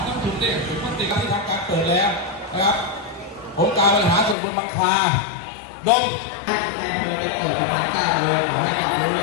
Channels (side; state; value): right; drops out; at 4.4 s